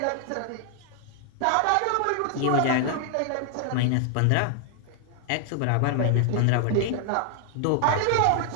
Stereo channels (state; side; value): different; both; correlation 0.00